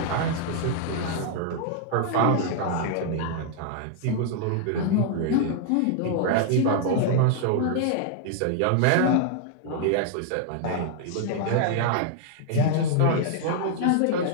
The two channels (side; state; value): both; different; correlation 0.00